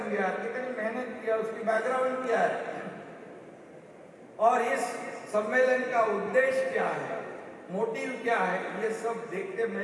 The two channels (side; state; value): both; identical; correlation 1.00